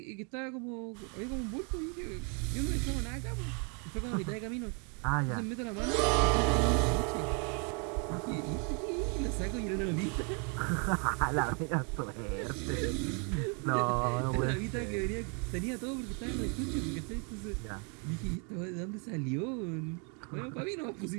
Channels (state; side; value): quieter; left; 36.8 dB